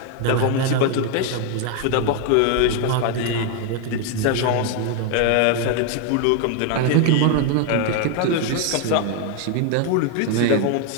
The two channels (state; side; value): different; both; correlation 0.01